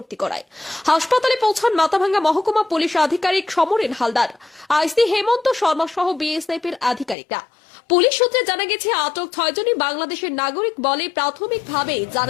করায়। হাসপাতালে পৌঁছান মাথাভাঙ্গা মহকুমা পুলিশ আধিকারিক সমরেন হালদার, আইসি হেমন্ত শর্মা সহ বিএসএফ এর আধিকারিকরা। পুলিশ সূত্রে জানা গেছে, আটক 6 জনই বাংলাদেশের নাগরিক বলে প্রাথমিকভাবে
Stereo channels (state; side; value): drops out; right; at 7.2 s